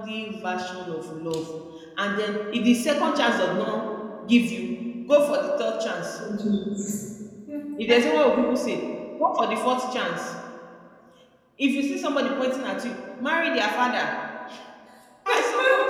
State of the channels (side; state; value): both; identical; correlation 1.00